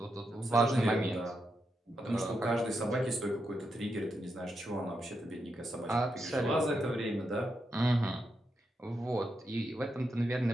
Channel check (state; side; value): normal; both; correlation 0.84